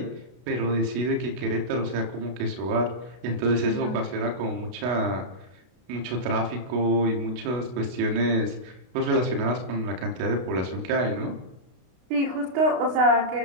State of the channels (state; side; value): late; left; 32 ms